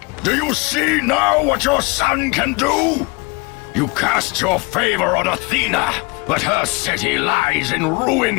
Do you see now what your son can do? You cast your favor on Athena, but her city lies in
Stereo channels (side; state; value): right; quieter; 27.5 dB